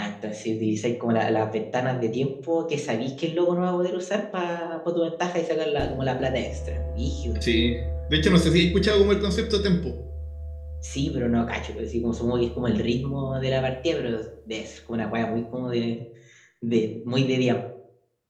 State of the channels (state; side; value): identical; both; correlation 1.00